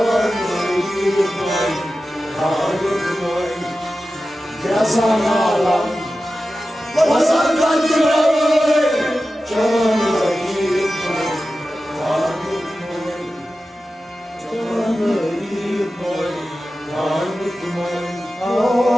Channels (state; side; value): normal; both; correlation 0.94